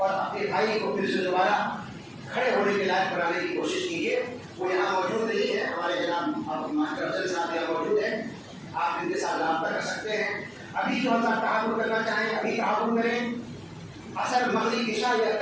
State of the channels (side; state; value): both; identical; correlation 1.00